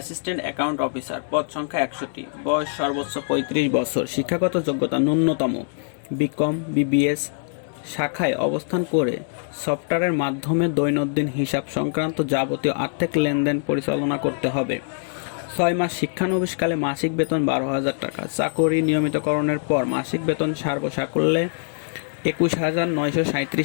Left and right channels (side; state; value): right; silent; 63 dB below the other